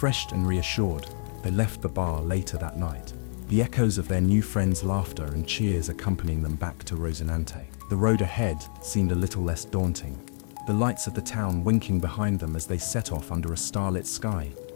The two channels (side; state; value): right; silent; 60 dB below the other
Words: and reassured, they left the bar later that night, the echoes of their new friends' laughter and cheers accompanying them back to Rosinante. The road ahead seemed a little less daunting, the lights of the town winking behind them as they set off under a starlit sky,